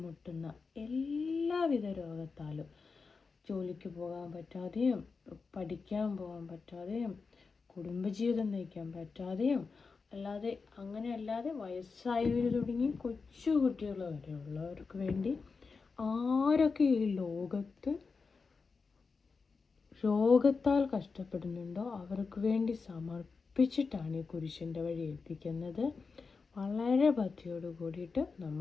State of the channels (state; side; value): quieter; right; 4.7 dB